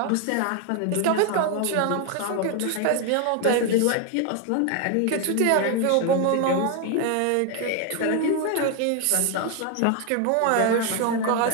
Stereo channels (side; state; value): both; different; correlation 0.01